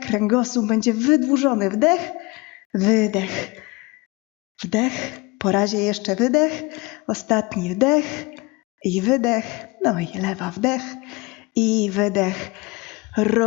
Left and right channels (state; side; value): quieter; right; 24.2 dB